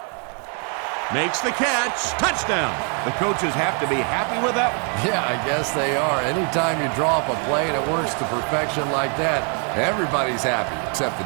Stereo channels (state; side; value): quieter; left; 40.0 dB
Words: Makes the catch. Touchdown. The coaches have to be happy with that one. Yeah, I guess they are. Anytime you draw up a play and it works to perfection like that, everybody's happy except the